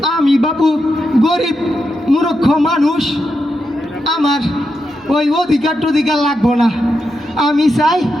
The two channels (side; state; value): both; normal; correlation 0.86